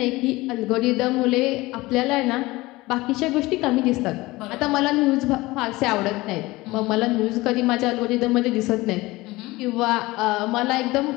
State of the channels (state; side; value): quieter; right; 20.4 dB